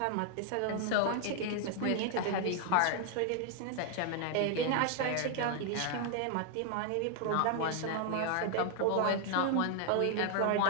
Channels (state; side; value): different; both; correlation 0.00